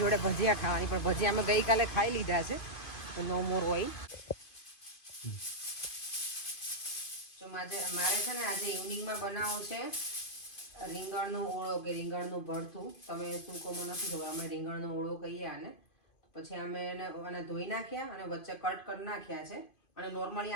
જોડે ભજીયા ખાવાની, પણ ભજીયા અમે ગઈકાલે ખાઈ લીધા છે, તો નો મોર ઓઇલ. તો મારે છે ને આજે ઇવનિંગમાં બનાવવું છે રીંગણનો ઓળો કે રીંગણનું ભરથું. તમે શું કહો મને નથી ખબર, અમે રીંગણનો ઓળો કહીએ આને. પછી અમે એને ધોઈ નાખ્યા અને વચ્ચે કટ કરી નાખ્યા છે. અને નોર્મલી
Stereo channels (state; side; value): late; right; 2.5 ms